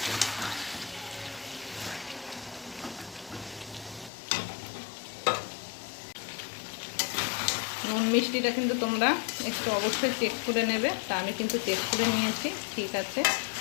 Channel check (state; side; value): drops out; right; at 4.1 s